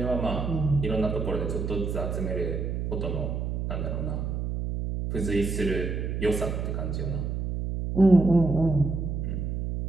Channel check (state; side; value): noise; right; hum, 2 dB below the sound